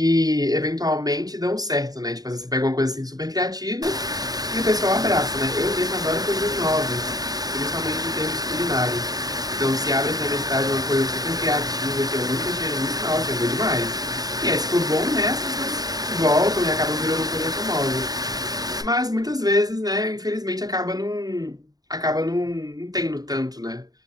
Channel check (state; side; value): late; left; 0.18 ms